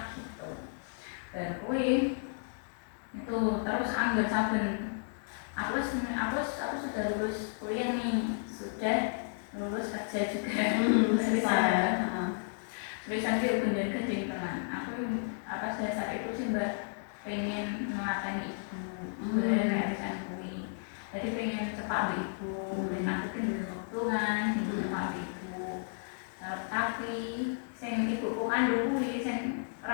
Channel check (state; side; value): silent; right; digital silence